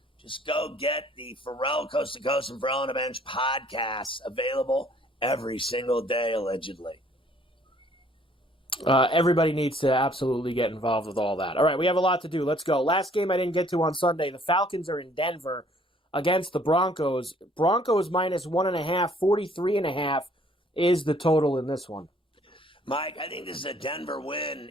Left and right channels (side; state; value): both; normal; correlation 0.60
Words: Just go get the Ferrall Coast to Coast and Ferrall on the Bench podcasts available every single day, allegedly. Everybody needs to absolutely get involved with all that. All right, we have a lot to do. Let's go. Last game I didn't get to on Sunday. The Falcons are in Denver against the Broncos. Broncos minus 1.5, 43.5 is the total in this one. Mike, I think this is a Denver win